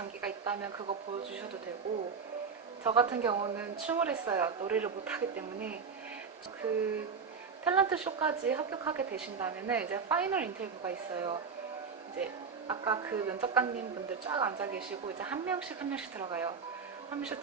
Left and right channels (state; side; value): quieter; left; 5.6 dB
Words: 있다면 그거 보여주셔도 되고, 저 같은 경우는 춤을 했어요. 노래를 못하기 때문에. 그 탤런트 쇼까지 합격하게 되신다면 이제 파이널 인터뷰가 있어요. 이제 아까 그 면접관님 분들 쫙 앉아 계시고 이제 한 명씩 들어가요. 한 명씩